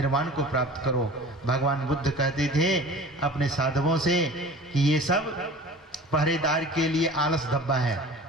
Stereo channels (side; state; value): both; normal; correlation 0.42